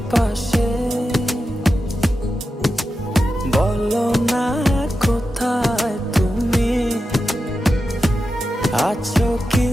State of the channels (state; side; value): normal; both; correlation 0.91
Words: পাশে? বলো না কোথায় তুমি, আছো কি